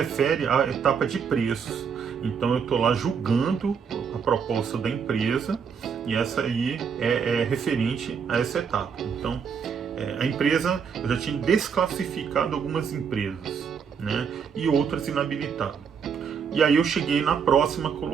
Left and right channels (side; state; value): left; quieter; 6.6 dB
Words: à etapa de preços. Então eu estou lá julgando a proposta da empresa e essa aí é referente a essa etapa. Então a empresa, eu já tinha desclassificado algumas empresas, né? E outras inabilitado. E aí eu cheguei na próxima